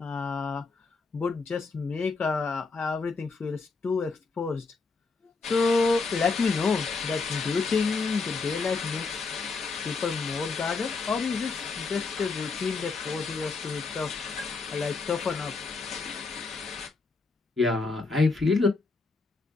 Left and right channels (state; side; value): quieter; right; 4.3 dB